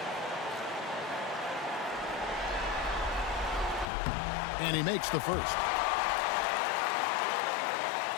And he makes the first.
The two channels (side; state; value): right; drops out; at 3.9 s